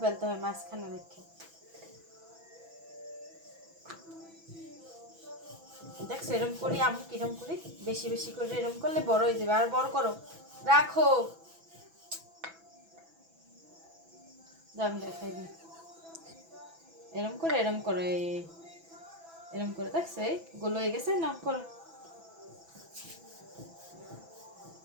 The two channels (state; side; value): late; left; 6.0 ms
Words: হয় মাঝখানে রেখে দেখছো এরকম করি আমি কিরম করি বেশি বেশি করে এরকম করলে বড় হয়ে যাবে আর বড় করো রাখো দাম দেখাই দিই এরম করে এরম করে দেখছো এই গোল হয়ে গেছে না করো